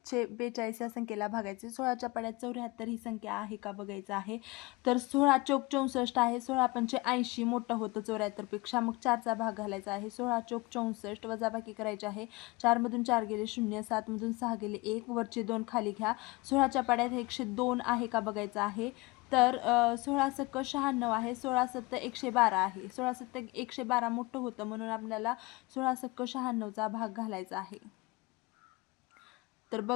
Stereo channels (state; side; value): quieter; right; 23.6 dB